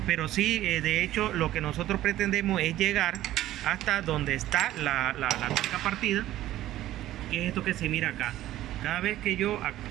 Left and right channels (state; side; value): quieter; left; 14.2 dB